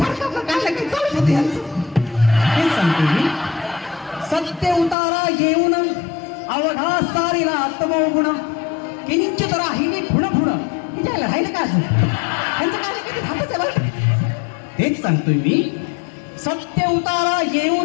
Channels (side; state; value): right; drops out; at 5.0 s